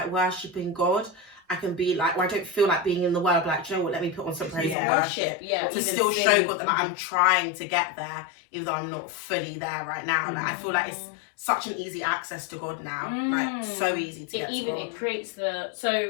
worshipping God, I can be like, or I don't feel like being in the word. Like, do you know what? Let me put on some praise and Yeah. worship Yeah. to even still show sing. God that like, I'm trying to get there, even though I'm not fully there right now. Like I feel like it's such an easy access to God now. Like so easy to get to God. It creates the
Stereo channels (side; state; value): right; drops out; at 4.8 s